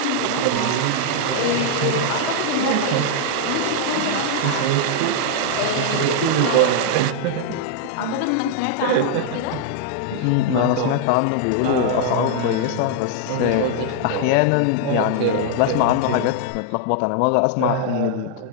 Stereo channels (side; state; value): both; different; correlation 0.00